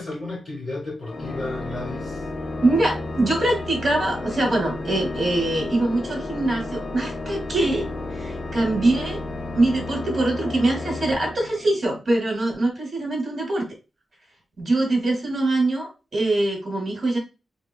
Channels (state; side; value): normal; both; correlation 0.90